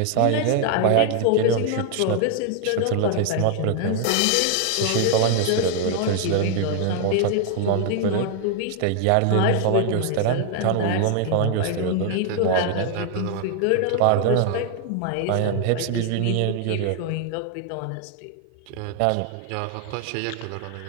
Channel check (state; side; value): different; both; correlation 0.00